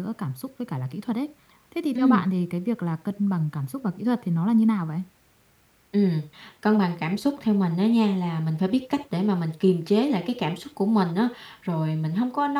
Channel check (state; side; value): identical; both; correlation 1.00